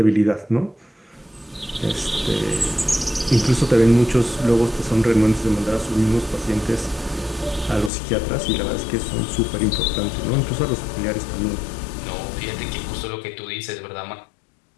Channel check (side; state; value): right; drops out; at 7.9 s